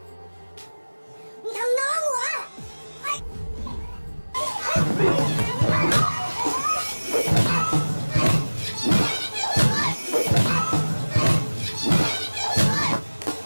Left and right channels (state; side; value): inverted; both; correlation -1.00